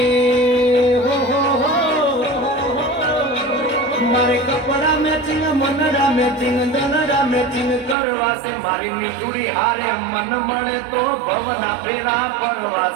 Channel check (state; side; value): drops out; left; at 8.0 s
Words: मारे कपड़ा मैचिंग मनड़ा मैचिंग दनड़ा मैचिंग करवा से मारी मीठुड़ी हारे मन मळे तो भवना फेरा पड़वा